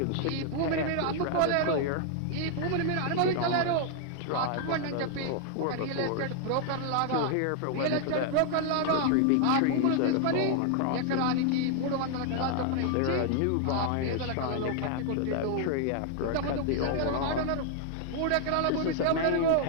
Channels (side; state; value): both; different; correlation 0.00